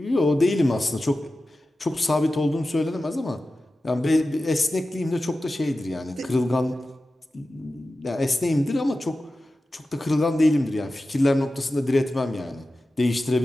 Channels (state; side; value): normal; both; correlation 0.94